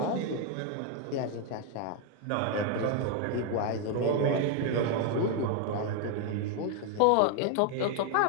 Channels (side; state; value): both; different; correlation 0.01